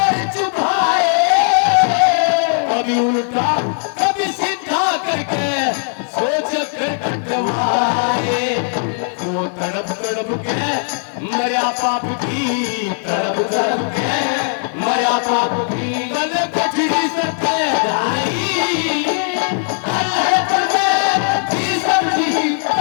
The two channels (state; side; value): silent; right; digital silence